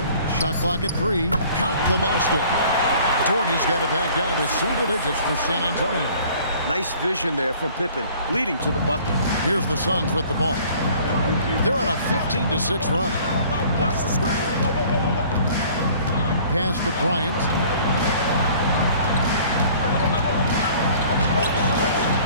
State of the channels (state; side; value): inverted; both; correlation -0.52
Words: Shot clock at 3. Count the basket. Doherty's got it back down to single digits for San Antonio. Nice vision there from Pippen, leading to the bucket. Here's the Suns with the ball. They're on a 15-6 run. Pass to Bryant.